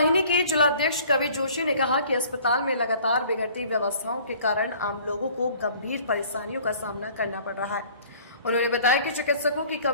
के जिलाध्यक्ष कवि जोशी ने कहा कि अस्पताल में लगातार बिगड़ती व्यवस्थाओं के कारण आम लोगों को गंभीर परेशानियों का सामना करना पड़ रहा है। उन्होंने बताया कि चिकित्सकों की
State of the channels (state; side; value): inverted; both; correlation -0.52